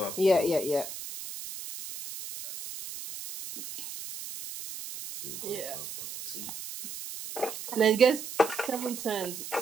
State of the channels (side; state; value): right; noise; hiss, 9 dB below the sound